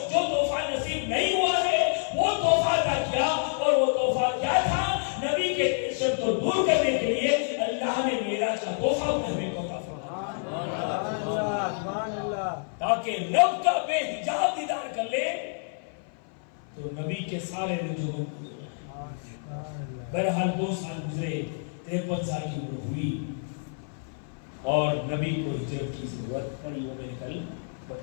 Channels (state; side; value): silent; right; 57 dB below the other